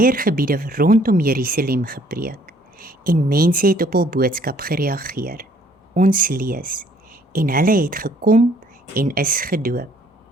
rondom Jerusalem gepreek, en mense het op hul boodskap gereageer. Ons lees, en hulle het gekom en is gedoop.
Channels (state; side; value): normal; both; correlation 0.61